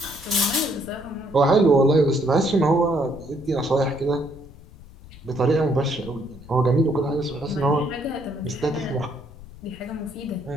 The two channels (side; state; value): left; noise; rumble, 19 dB below the sound